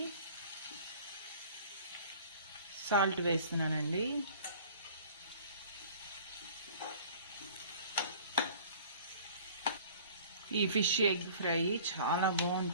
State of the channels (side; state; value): both; inverted; correlation -0.48